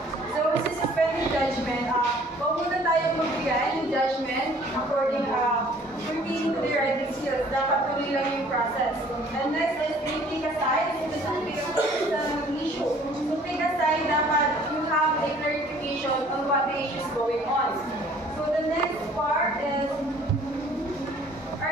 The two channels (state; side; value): normal; both; correlation 0.55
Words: So, sa suspending judgment, huwag muna tayong magbigay ng judgment according pertaining to the writing skills. Dapat tuloy lang yung process. And next is take aside. Ito sa pick aside ng issue. So, pick aside, dapat you have a clarification on what the issue is going on. So, the next part is